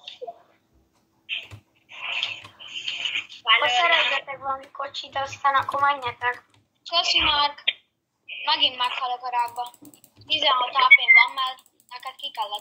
Ha szerezzetek valami kocsit, aztán akkor menjetek. Köszi, Márk. Megint meghalok a rákba. 16 AP-n van, mert neked ki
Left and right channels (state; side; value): identical; both; correlation 1.00